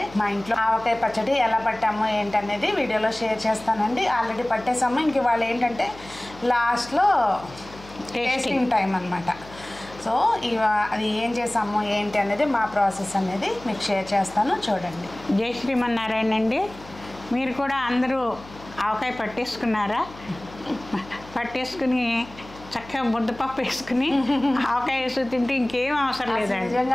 మా ఇంట్లో ఆవకాయ పచ్చడి ఎలా పట్టాము ఏంటనేది వీడియోలో షేర్ చేస్తానండి. ఆల్రెడీ పట్టేసాము, ఇంక వాళ్ళు ఏంటంటే లాస్ట్లో టేస్టింగ్ టైం అనమాట. సో అది ఏం చేసాము ఏంటి అనేది మా ప్రాసెస్ అనేది మీకు షేర్ చేస్తాను, చూడండి. జై శ్రీమన్నారాయణ అండి. మీరు కూడా అందరూ ఆవకాయ పట్టేసుకున్నారా? పట్టేసుకుని చక్కగా ముద్దపప్పు వేసుకుని ఆవకాయ వేసి తింటే ఇంకేం అవసరం లేదండి.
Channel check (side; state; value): left; noise; hum, 19 dB below the sound